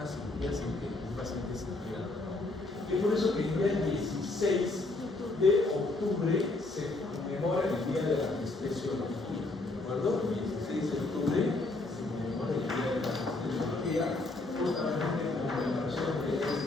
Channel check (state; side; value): quieter; right; 3.1 dB